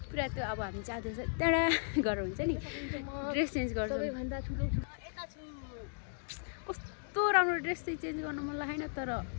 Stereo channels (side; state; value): right; silent; digital silence